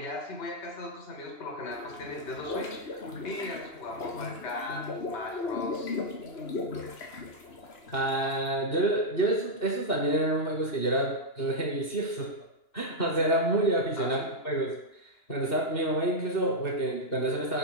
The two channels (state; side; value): late; right; 2.9 ms